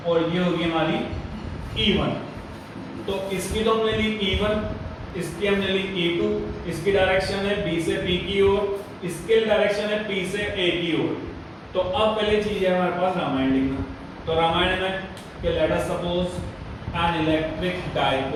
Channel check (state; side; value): identical; both; correlation 1.00